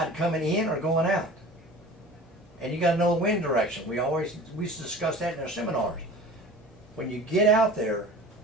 coming in or going out? And you got to know the wind direction. We used to discuss that in our seminars. When you get out there,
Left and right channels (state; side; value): normal; both; correlation 0.40